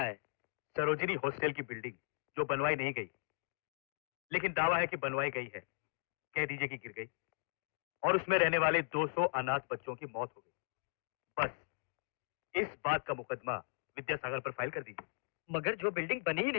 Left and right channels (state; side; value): silent; right; digital silence